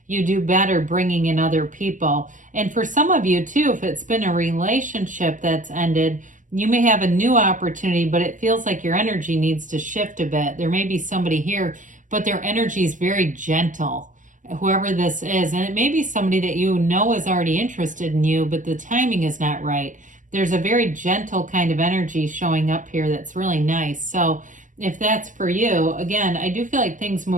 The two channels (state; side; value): late; left; 0.37 ms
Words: do better bringing in other people. And for some of you too, if it's been a relationship that's ended, you may have a new opportunity, but it feels like your energy needs to shift a bit. There may be somebody here, but their energy is very gentle, whoever this is. And it may be somebody that you know is already interested in you, but the timing is not right. There's a very gentle kind of energy showing up here that's really nice. So if that's for you, again, I do feel like things